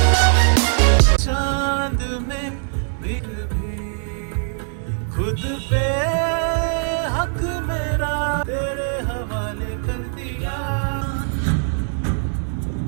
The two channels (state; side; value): silent; left; 65 dB below the other